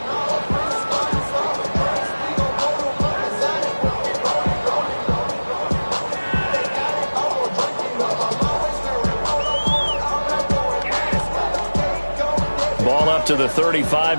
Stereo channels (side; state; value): both; inverted; correlation -1.00